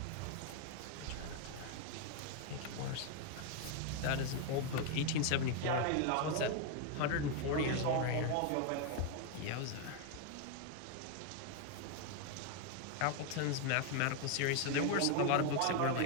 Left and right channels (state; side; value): different; both; correlation 0.01